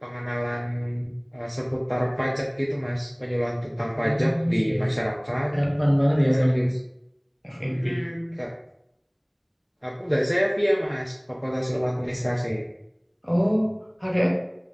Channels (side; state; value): both; identical; correlation 1.00